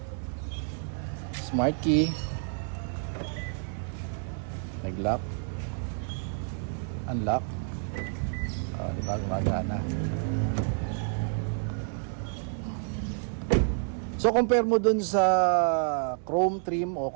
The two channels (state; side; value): silent; left; 58 dB below the other